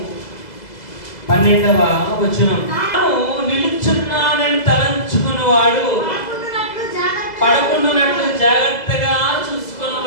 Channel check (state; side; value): late; right; 2.0 ms